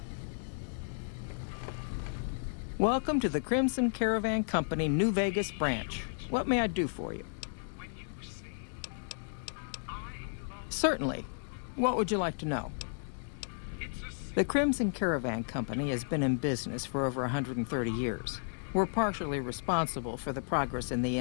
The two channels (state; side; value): silent; right; digital silence